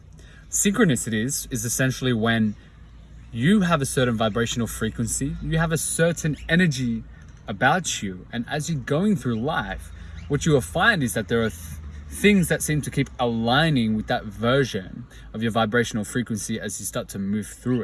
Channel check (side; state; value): both; identical; correlation 1.00